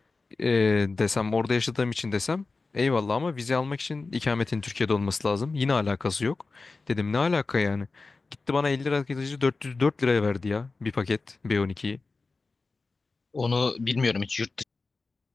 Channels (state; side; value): quieter; right; 3.9 dB